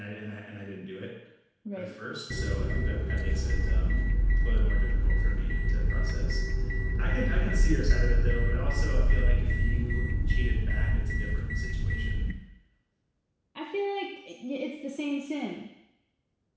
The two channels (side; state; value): both; identical; correlation 1.00